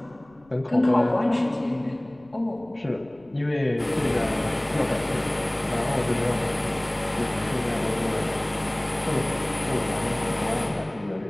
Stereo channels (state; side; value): noise; left; rumble, 28 dB below the sound